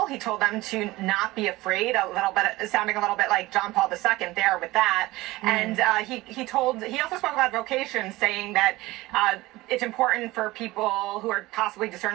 He told them to not be afraid, sounding a little bit like John Paul II there with that. And he also spoke about vocations, saying that it's important for people who are possibly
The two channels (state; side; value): quieter; left; 19.4 dB